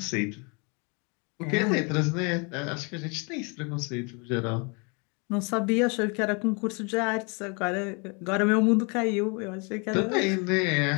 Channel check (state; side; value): quieter; right; 33.0 dB